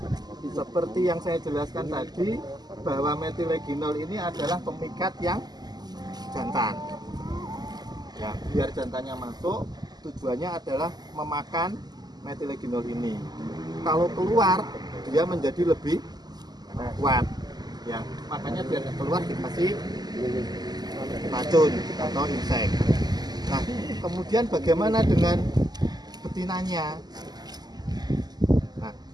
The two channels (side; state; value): left; late; 0.20 ms